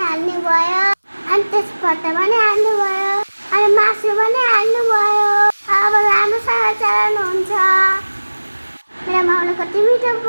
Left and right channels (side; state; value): both; inverted; correlation -1.00